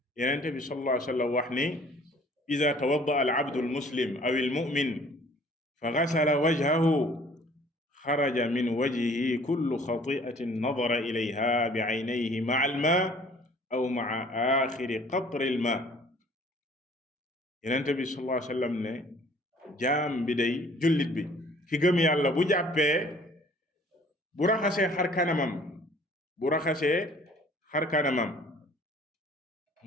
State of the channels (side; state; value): both; normal; correlation 0.54